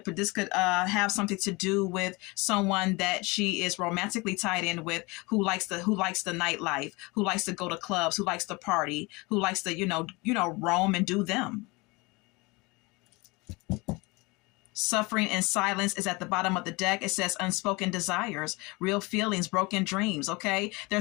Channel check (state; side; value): quieter; right; 25.4 dB